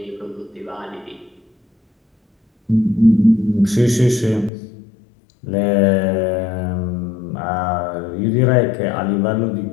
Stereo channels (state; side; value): drops out; right; at 4.5 s